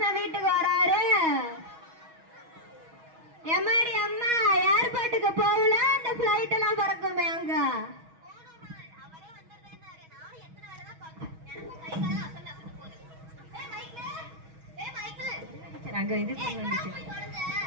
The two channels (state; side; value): late; left; 6.3 ms